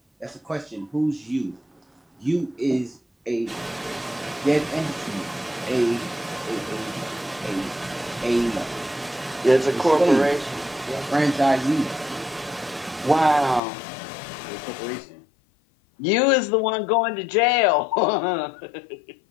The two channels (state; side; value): drops out; right; at 13.6 s